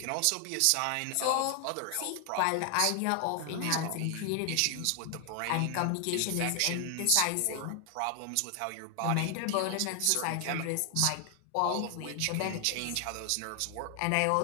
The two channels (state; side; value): different; both; correlation 0.00